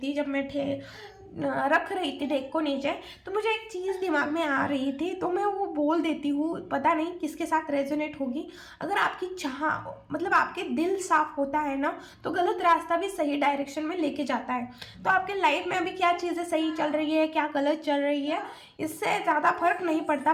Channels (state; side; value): identical; both; correlation 1.00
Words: जब मैं रख रही थी डेक को नीचे, तो मुझे एक चीज़ दिमाग में आ रही थी, तो मैं वो बोल देती हूँ। पता नहीं किसके साथ रेजोनेट होगी। अगर आपकी आपके दिल साफ होता है ना, तो गलत रास्ता भी सही डायरेक्शन में लेके जाता है। तो आपके लाइफ में अभी क्या चीज़ें सही चल रही है, क्या गलत चल रही है, इससे ज़्यादा फर्क नहीं पड़ता।